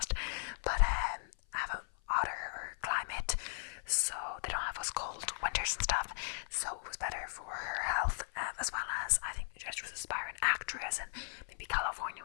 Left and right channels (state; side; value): silent; right; 53 dB below the other